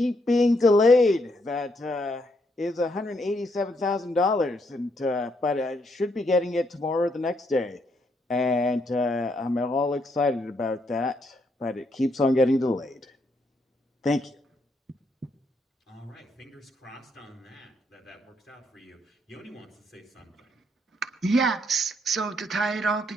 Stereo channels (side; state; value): both; normal; correlation 0.75